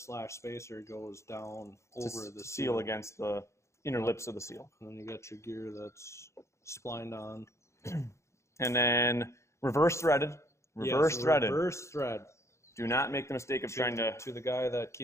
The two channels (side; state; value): right; late; 0.14 ms